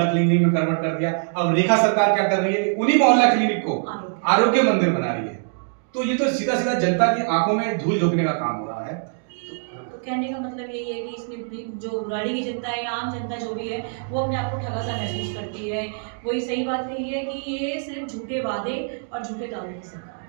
क्लिनिक में कन्वर्ट कर दिया। अब रेखा सरकार क्या कर रही है कि उन्हीं मोहल्ला क्लिनिक को आरोग्य मंदिर बना रही है। तो ये तो सीधा सीधा जनता की आंखों में धूल झोंकने का काम हो रहा है। तो कहने का मतलब यही है कि इसमें भी जो बुराड़ी की जनता है या आम जनता जो भी है वो अपने आप को ठगा सा महसूस करती है। वही सही बात यही है कि ये सिर्फ झूठे वादे और झूठे दावों की सरकार है।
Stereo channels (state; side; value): silent; left; digital silence